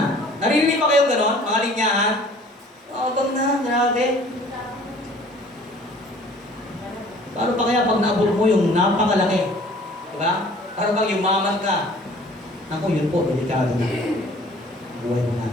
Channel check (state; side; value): normal; both; correlation 0.51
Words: Naririnig pa kayong gano'n, mga linyahan? Yabang na, grabe. Paano pa kaya pag naabot mo yung napakalaki? Diba? Para bang yumaman ka? Naku, yun po, delikado na. Buhay mo